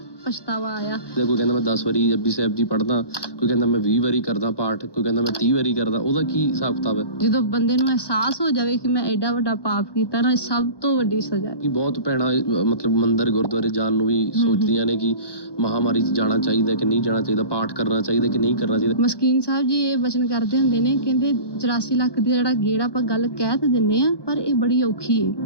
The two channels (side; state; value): right; late; 1.2 ms